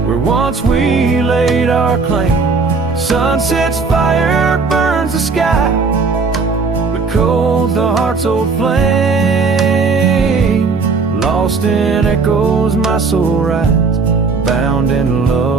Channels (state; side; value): quieter; left; 4.5 dB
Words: where once we laid our claim. Sunset's fire burns the sky, but cold the heart's old flame. Lost in echoes my soul rides, bound in